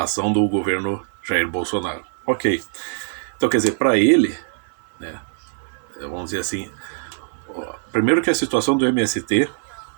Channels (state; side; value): silent; left; 56 dB below the other